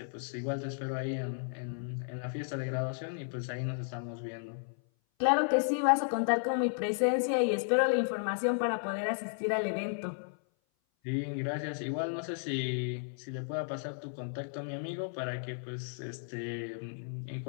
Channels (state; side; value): silent; right; 55 dB below the other